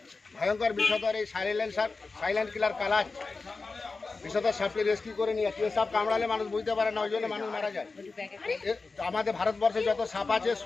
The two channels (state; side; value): quieter; right; 4.0 dB